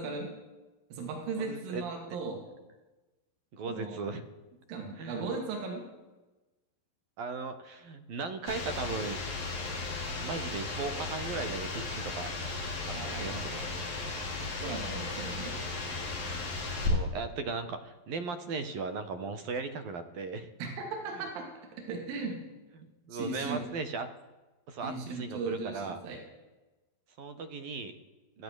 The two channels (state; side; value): late; left; 12 ms